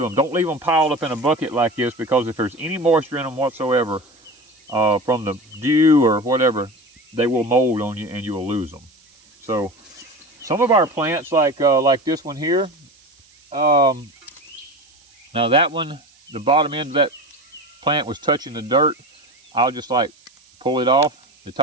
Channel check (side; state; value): right; noise; hiss, 30 dB below the sound